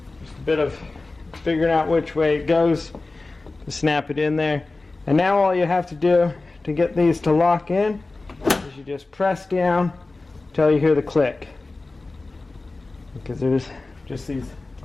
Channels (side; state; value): right; quieter; 3.3 dB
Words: Just a bit of figuring out which way it goes to snap it in there. And now all you have to do to get these to lock in is you just press down until you hear the click, because there's just these